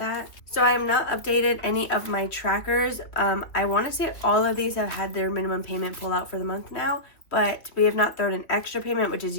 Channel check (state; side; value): late; right; 2.8 ms